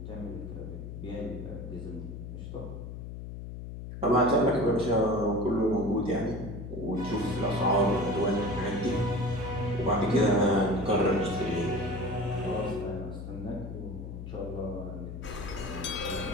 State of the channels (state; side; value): noise; left; hum, 9 dB below the sound